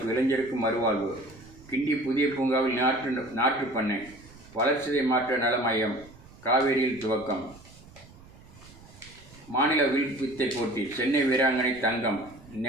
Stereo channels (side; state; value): right; noise; rumble, 22 dB below the sound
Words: இளைஞருக்கு மறுவாழ்வு. கிண்டி புதிய பூங்காவில் நாற்று பண்ணை, வளர்ச்சிதை மாற்ற நல மையம் காவேரியில் துவக்கம். மாநில வில் வித்தை போட்டி, சென்னை வீராங்கனை தங்கம்